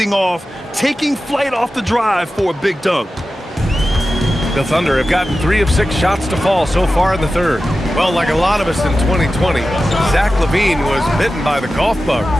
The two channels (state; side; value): normal; both; correlation 0.93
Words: off, taking flight off the drive for a big dunk. The Thunder have gotten 3 of 6 shots to fall so far in the third. Well, like a lot of us in 2020, Zach LaVine was bitten by the golf bug.